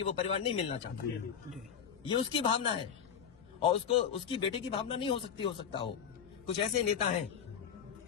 वो परिवार नहीं मिलना चाहता, ये उसकी भावना है और उसको उसकी बेटे की भावना नहीं हो सकता हो। कुछ ऐसे नेता हैं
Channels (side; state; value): right; quieter; 7.8 dB